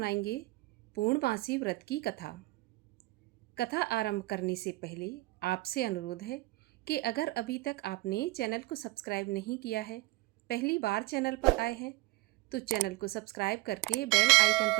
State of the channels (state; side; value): quieter; left; 20.7 dB